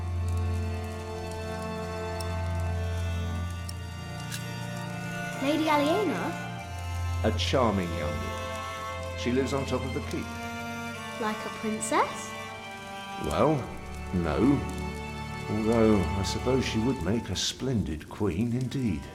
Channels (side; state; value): both; identical; correlation 1.00